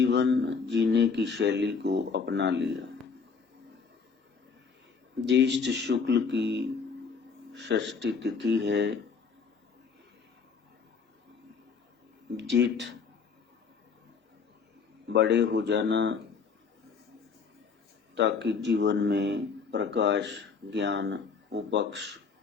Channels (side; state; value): right; quieter; 5.5 dB